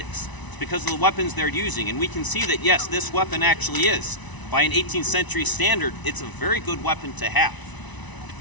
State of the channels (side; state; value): right; late; 1.0 ms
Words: It's because of the weapons they're using. And we can see that, yes, this weapon actually is. By an 18th century standard, it's a very good weapon to have.